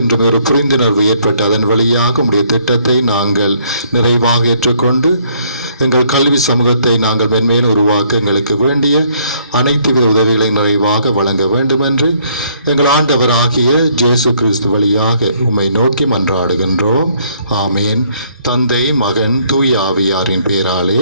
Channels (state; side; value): inverted; both; correlation -0.66